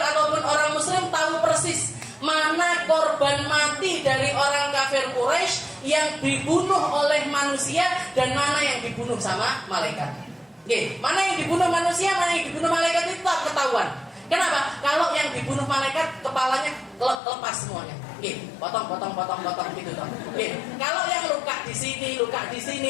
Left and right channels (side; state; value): right; drops out; at 17.2 s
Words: orang muslim tahu persis mana korban mati dari orang kafir Quraisy yang dibunuh oleh manusia dan mana yang dibunuh sama malaikat. Mana yang dibunuh manusia, mana yang dibunuh malaikat itu tak ketahuan. Kenapa? Kalau yang dibunuh malaikat kepalanya lepas semuanya. Potong gitu toh. Kalau yang luka di sini,